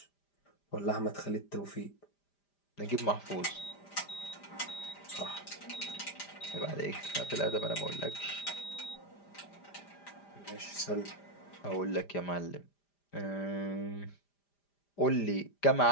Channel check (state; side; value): late; right; 5.0 ms